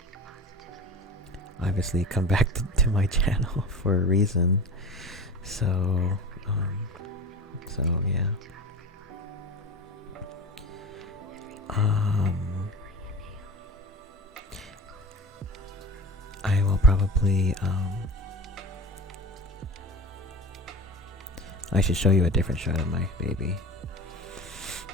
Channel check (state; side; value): normal; both; correlation 0.33